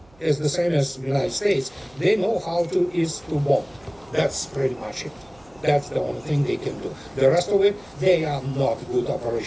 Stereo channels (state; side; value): noise; right; hum, 29 dB below the sound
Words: is the same as the United States. They know how is to bomb. That's pretty much it. That's the only thing they can do. The rest of it, they are not good